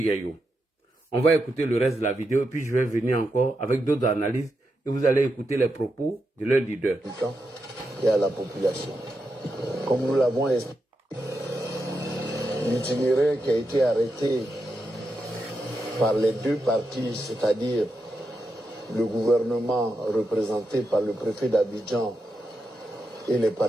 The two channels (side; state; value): both; normal; correlation 0.86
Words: On va écouter le reste de la vidéo et puis je vais venir encore avec d'autres analyses et vous allez écouter les propos de leur leader. Et à la population. Comme nous l'avons expliqué, l'itinéraire qui a été arrêté par les deux partis, c'est-à-dire le gouvernement représenté par le préfet d'Abidjan et les